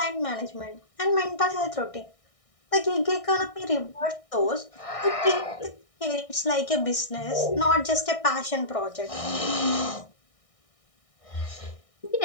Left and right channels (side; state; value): right; late; 1.6 ms